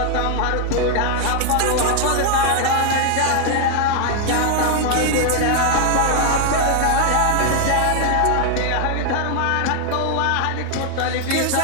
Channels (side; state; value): both; different; correlation 0.00